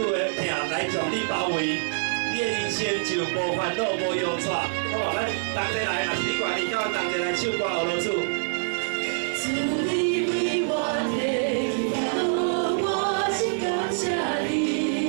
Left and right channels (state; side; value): silent; left; digital silence